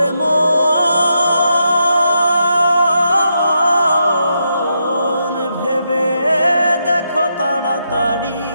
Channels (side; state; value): both; inverted; correlation -0.82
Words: মন ভেবে দেখো তাড়াতাড়ি